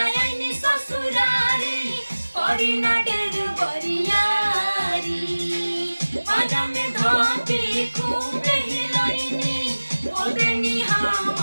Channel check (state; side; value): inverted; both; correlation -1.00